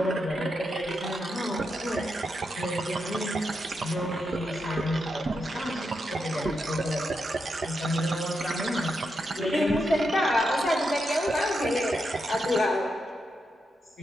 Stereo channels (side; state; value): both; normal; correlation 0.85